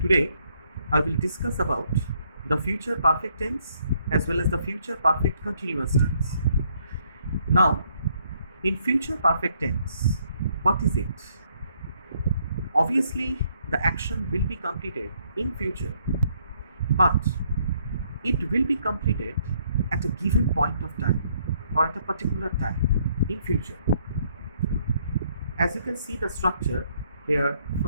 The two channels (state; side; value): inverted; both; correlation -0.69